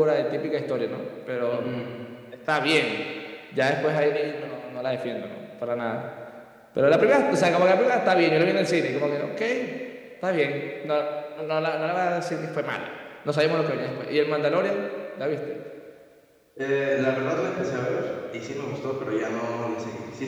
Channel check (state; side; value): identical; both; correlation 1.00